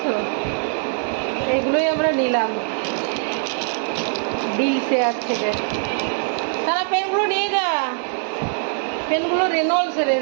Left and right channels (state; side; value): silent; left; 64 dB below the other